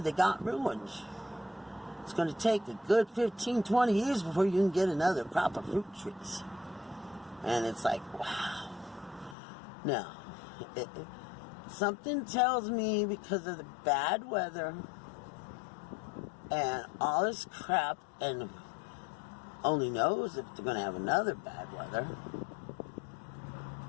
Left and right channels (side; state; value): right; drops out; at 9.3 s